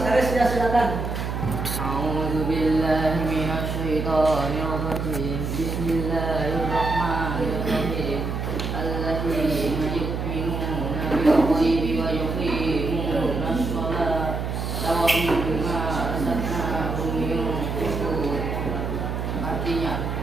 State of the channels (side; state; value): right; noise; hum, 3 dB below the sound